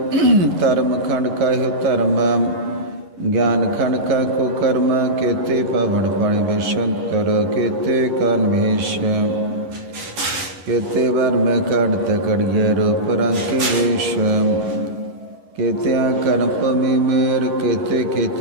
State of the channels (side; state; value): left; late; 11 ms